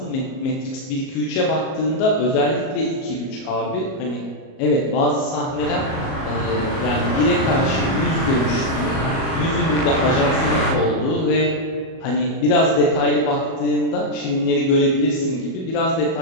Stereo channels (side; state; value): right; late; 37 ms